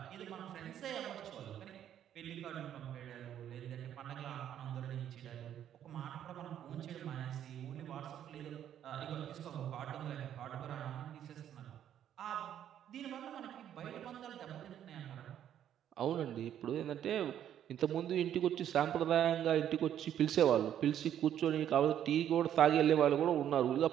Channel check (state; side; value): quieter; left; 10.3 dB